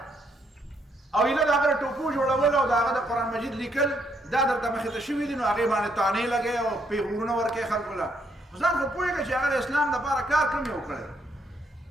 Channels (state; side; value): normal; both; correlation 0.73